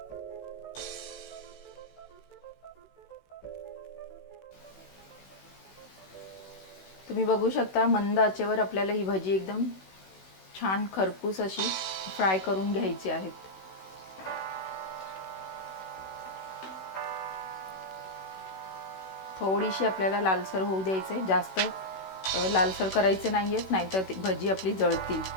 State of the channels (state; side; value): late; right; 16 ms